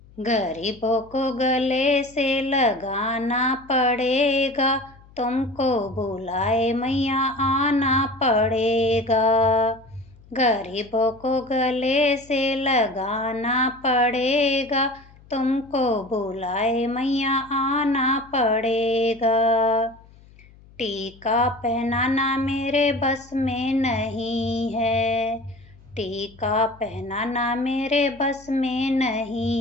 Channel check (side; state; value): left; noise; hum, 25 dB below the sound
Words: गरीबों को गले से लगाना पड़ेगा, तुमको बुलाए मैया आना पड़ेगा। गरीबों को गले से लगाना पड़ेगा, तुमको बुलाए मैया आना पड़ेगा। टीका पहनाना मेरे बस में नहीं है, टीका पहनाना मेरे बस में